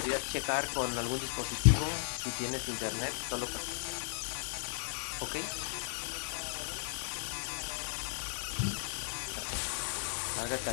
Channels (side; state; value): right; silent; 54 dB below the other